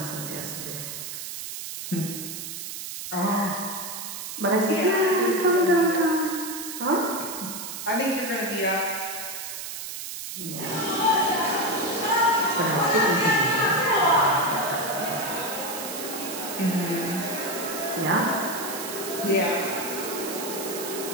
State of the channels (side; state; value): right; noise; hiss, 7 dB below the sound